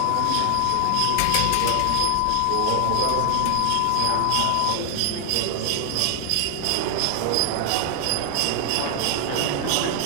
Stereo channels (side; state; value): both; different; correlation 0.00